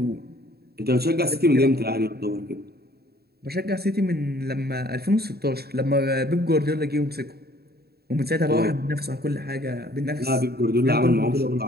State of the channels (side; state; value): left; late; 0.46 ms